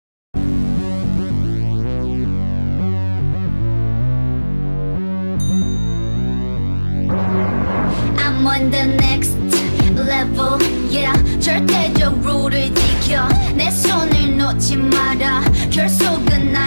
I'm on the next level, yeah. 절대적 룰을 지켜 내 손을 놓지 마라. 결속은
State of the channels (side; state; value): both; inverted; correlation -1.00